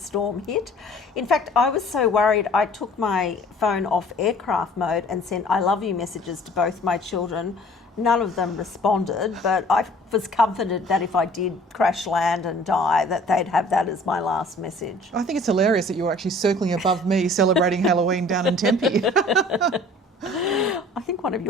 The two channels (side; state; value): both; normal; correlation 0.51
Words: hit. In fact, I was so worried I took my phone off aircraft mode and sent I love you messages to both my children. None of them responded, but I was comforted that if I did crash land and die, that they'd have that as my last message. I think it's hilarious that you're actually circling above me celebrating Halloween down in Tempe. I think one of